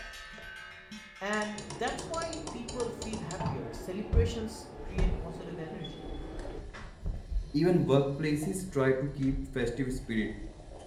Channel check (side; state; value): both; identical; correlation 1.00